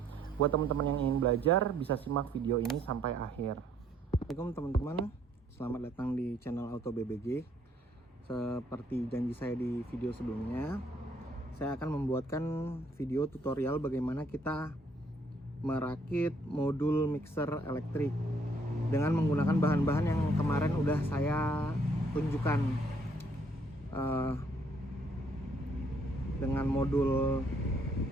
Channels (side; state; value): both; normal; correlation 0.66